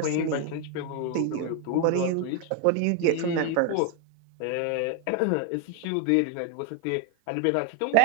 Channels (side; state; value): both; different; correlation 0.00